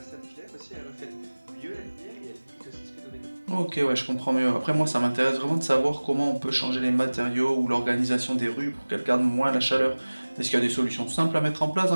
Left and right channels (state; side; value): inverted; both; correlation -1.00